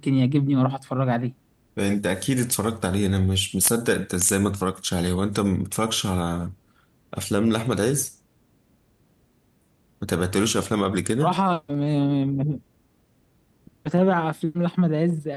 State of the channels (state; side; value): identical; both; correlation 1.00